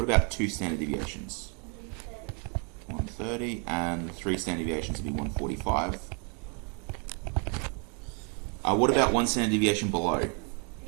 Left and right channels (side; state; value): left; quieter; 37.7 dB